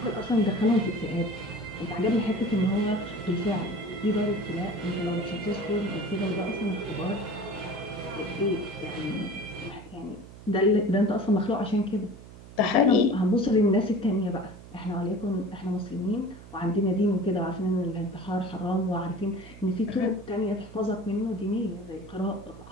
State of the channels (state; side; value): noise; right; hum, 17 dB below the sound